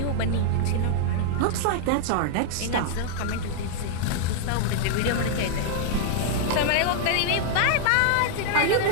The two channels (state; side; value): different; both; correlation 0.00